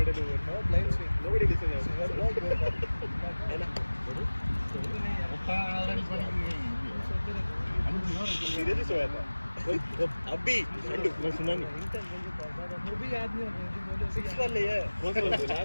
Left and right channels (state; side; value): inverted; both; correlation -1.00